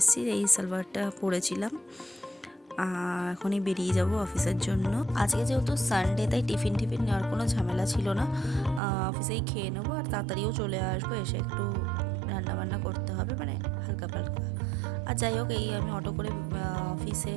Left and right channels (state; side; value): drops out; left; at 8.8 s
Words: এই সালোয়ারটা পরেছিলাম। এখনই বেরিয়ে যাব অফিসের জন্য। আজকে যেহেতু সানডে, তাই টিফিন নেওয়ার কোনো ঝামেলা ছিল না। অফিসেই খেয়ে নেবো আর তাড়াতাড়িও চলে আসবো। এসে একটু রান্নাবান্না করতে হবে, মানে হালকা পালকা। আর যাই হোক, এই আমি অটো করে অফিসে